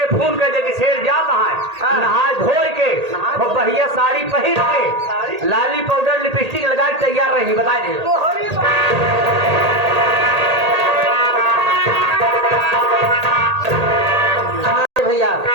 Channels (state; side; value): late; left; 1.8 ms